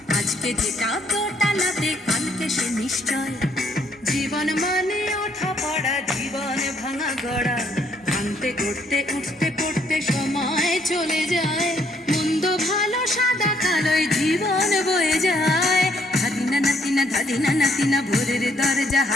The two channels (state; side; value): normal; both; correlation 0.68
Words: আজকে যেটা দোটানাতে কালকে সে নিশ্চয়। জীবন মানে ওঠা পড়া, জীবন ভাঙা গড়া, ভাঙতে গড়তে উঠতে পড়তে সময় চলে যায়। মন্দ ভালো সাদা কালোয় জীবন বয়ে যায়। ধাদিনা নাতিনা ধাদিনা নাতিনা ভোরের দরজা